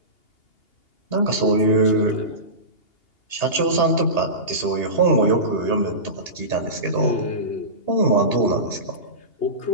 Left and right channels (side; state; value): right; late; 2.8 ms